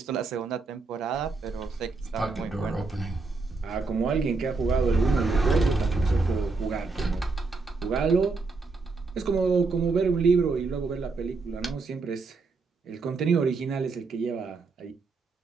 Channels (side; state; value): left; quieter; 4.0 dB